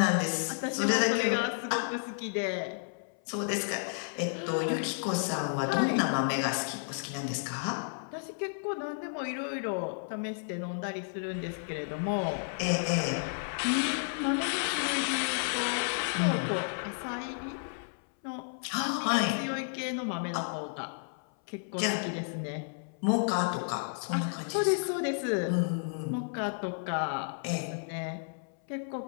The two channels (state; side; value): silent; right; 56 dB below the other